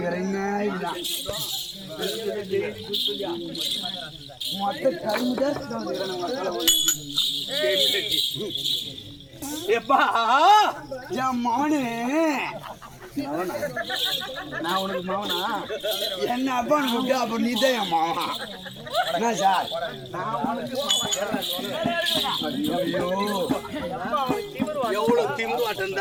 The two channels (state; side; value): identical; both; correlation 1.00